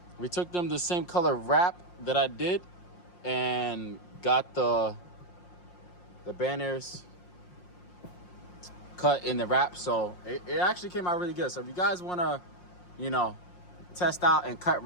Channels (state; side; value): late; right; 5.6 ms